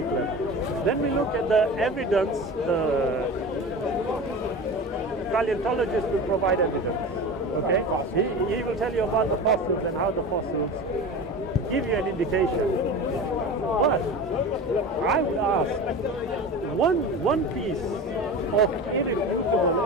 level, then we look at the evidence, the paleontologist will provide evidence, okay? He will tell you about the fossils and how the fossils give you an indication. But I would ask, one piece of irrefutable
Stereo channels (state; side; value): normal; both; correlation 0.31